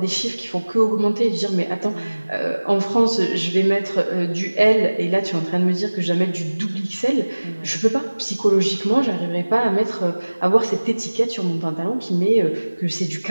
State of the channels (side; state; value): both; inverted; correlation -1.00